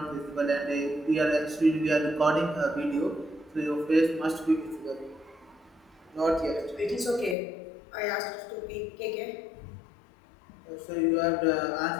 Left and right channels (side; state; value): right; drops out; at 7.4 s